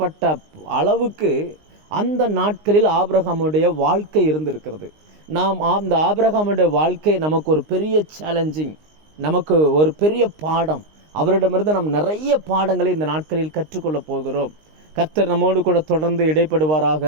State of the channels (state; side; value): late; left; 19 ms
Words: அளவுக்கு அந்த நாட்களில் ஆபிரகாமுடைய வாழ்க்கை இருந்திருக்கிறது. நாம் அந்த ஆபிரகாமுடைய வாழ்க்கை நமக்கு ஒரு பெரிய சேலஞ்சிங், நமக்கு ஒரு பெரிய பாடம். அவரிடமிருந்து நாம் நிறைய பாடங்களை இந்த நாட்களில் கற்றுக்கொள்ள போகிறோம். கர்த்தர் நம்மோடு கூட தொடர்ந்து